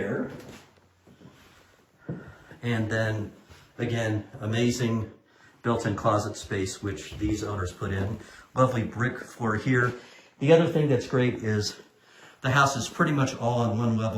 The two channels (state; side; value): identical; both; correlation 1.00